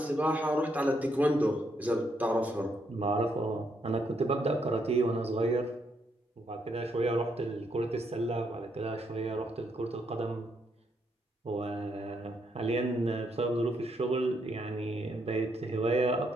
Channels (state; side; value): normal; both; correlation 0.76